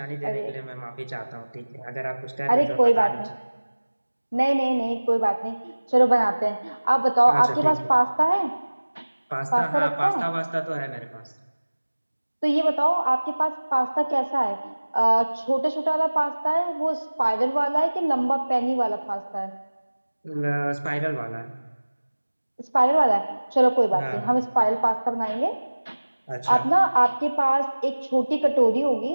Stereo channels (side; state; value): both; inverted; correlation -1.00